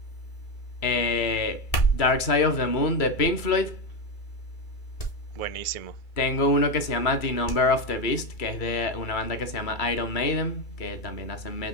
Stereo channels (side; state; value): right; late; 2.3 ms